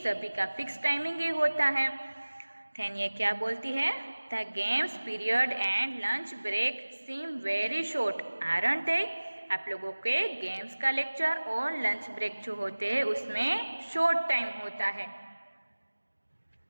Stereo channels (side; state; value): both; inverted; correlation -1.00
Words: का फिक्स टाइमिंग ही होता है। देन ये क्या बोलती है, the games period and lunch break seem very short aren't they, आप लोगों के गेम्स का लेक्चर और लंच ब्रेक जो होते हैं उसमें शॉर्ट टाइम होता है।